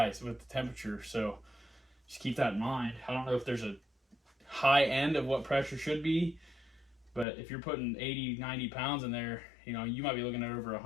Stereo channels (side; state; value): right; drops out; at 7.2 s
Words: with the temperature. So just keep that in mind. I don't know if there's a high end of what pressure should be, but if you're putting 80-90 pounds in there, you know, you might be looking at over